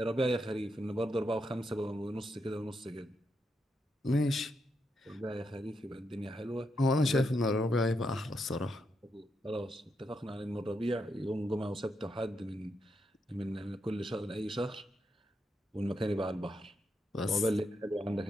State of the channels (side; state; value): both; normal; correlation 0.82